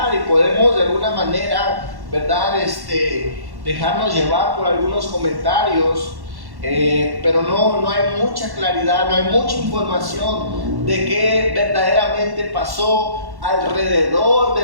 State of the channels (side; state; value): left; late; 1.1 ms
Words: y podemos de alguna manera, ¿verdad?, dejarnos llevar por algunos comentarios, pero no hay mucha claridad, no hay mucha información de qué verdaderamente pasó alrededor